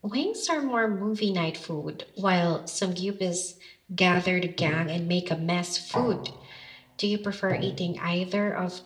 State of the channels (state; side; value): identical; both; correlation 1.00